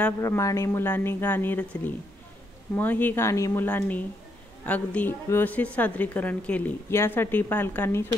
मुलांनी गाणी रचली. ही गाणी मुलांनी अगदी व्यवस्थित सादरीकरण केली. यासाठी पालकांनी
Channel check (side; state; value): both; normal; correlation 0.76